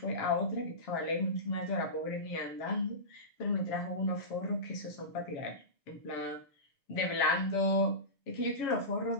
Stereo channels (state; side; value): late; right; 6.8 ms